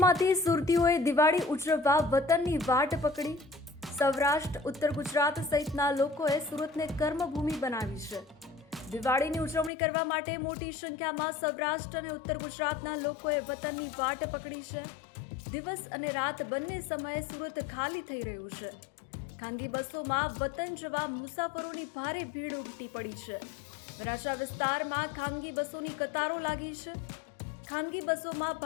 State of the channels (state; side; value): drops out; right; at 9.7 s